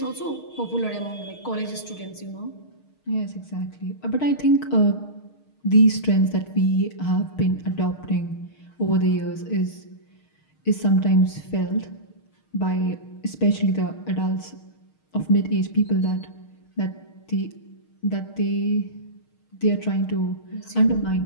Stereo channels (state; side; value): late; right; 6.5 ms